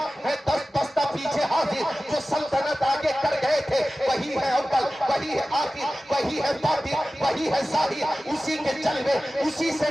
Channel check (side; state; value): both; normal; correlation 0.96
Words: ہے, دست بستہ پیچھے حاضر, جو سلطنت آگے کر گئے تھے وہی ہے اول, وہی ہے آخر, وہی ہے باطن, وہی ہے ظاہر, اسی کے جلوے, اسی سے